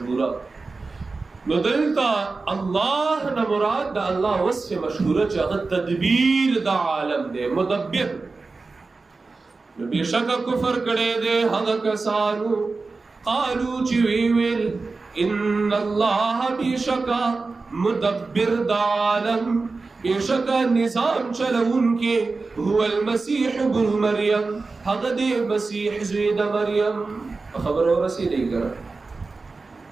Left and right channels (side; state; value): left; quieter; 3.9 dB